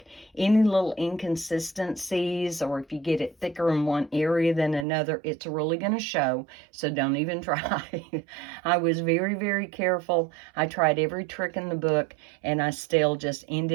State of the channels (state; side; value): drops out; left; at 4.9 s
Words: any little inconsistencies, or if you get it thicker in one area than another, it's really going to show, so don't even try. I was very, very careful. I tried every trick in the book, and I still just